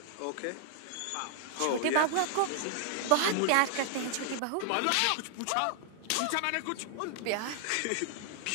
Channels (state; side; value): different; both; correlation -0.01